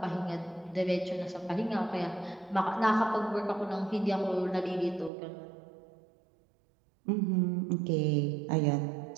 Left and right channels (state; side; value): drops out; left; at 5.1 s